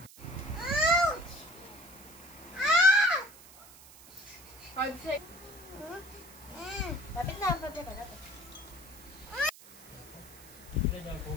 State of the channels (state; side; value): noise; right; hiss, 20 dB below the sound